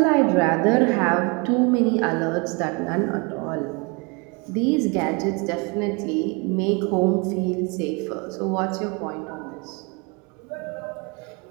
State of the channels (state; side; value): quieter; left; 29.8 dB